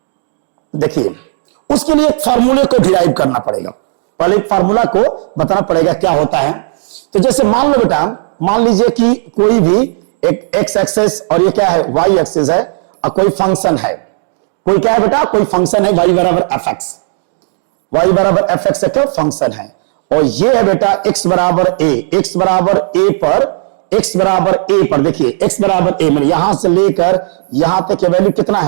देखिए उसके लिए एक फार्मूले को डिराइव करना पड़ेगा। पहले एक फार्मूला को बताना पड़ेगा क्या होता है। तो जैसे मान लो बेटा, मान लीजिए कि कोई भी एक एक्स एक्सेस और ये क्या है वाई एक्सेस है और कोई फंक्शन है, कोई क्या है बेटा, कोई फंक्शन है y बराबर एफ एक्स, वाई बराबर एफ एक्स का फंक्शन है और ये है बेटा x बराबर a, x बराबर a पर देखिए x बराबर a, मतलब यहां से लेकर यहां तक की वैल्यू कितना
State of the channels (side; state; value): left; silent; digital silence